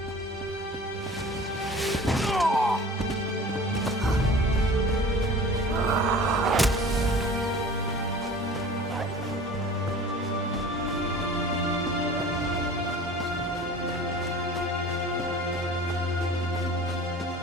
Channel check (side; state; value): both; normal; correlation 0.42